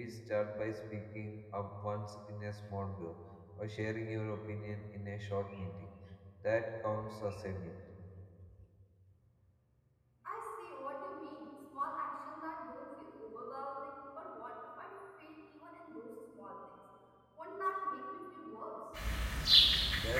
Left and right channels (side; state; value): both; identical; correlation 1.00